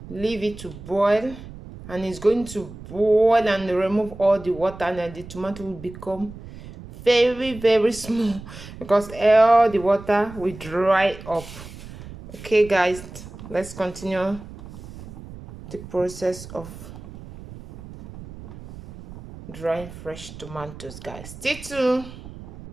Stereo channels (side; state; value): right; noise; rumble, 15 dB below the sound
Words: leave it to boil, and it's going to boil and remove all the water, and then the tomato will become very small because all the water will dry up. Okay guys, let's continue the process of drying fresh tomatoes, guys. Stay tuned.